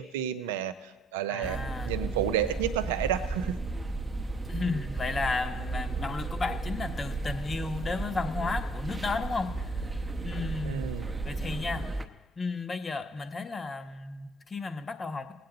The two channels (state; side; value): normal; both; correlation 0.61